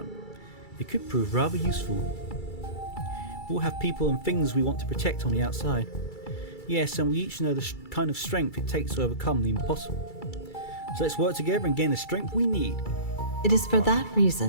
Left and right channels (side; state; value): right; late; 2.3 ms